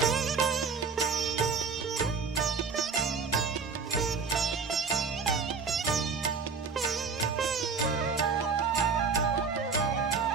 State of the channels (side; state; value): left; quieter; 5.3 dB